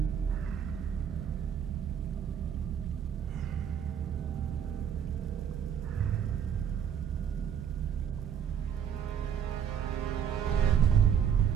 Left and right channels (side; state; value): left; quieter; 8.3 dB